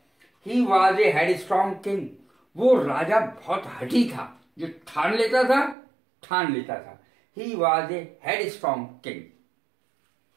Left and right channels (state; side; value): drops out; left; at 5.8 s